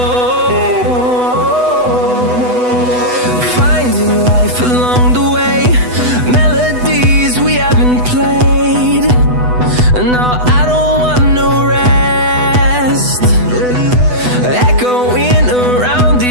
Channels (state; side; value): late; left; 8.0 ms